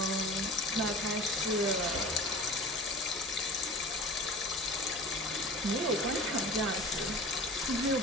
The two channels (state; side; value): normal; both; correlation 0.38